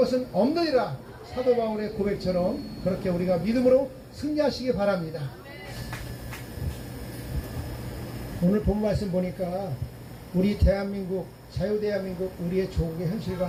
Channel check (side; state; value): both; identical; correlation 1.00